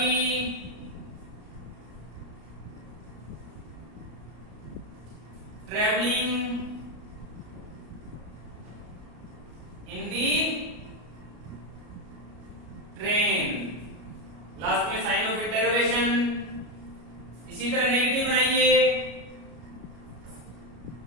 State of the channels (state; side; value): late; left; 33 ms